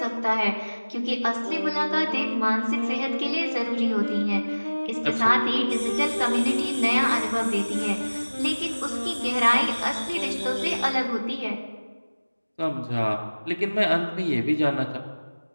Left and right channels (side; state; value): both; inverted; correlation -1.00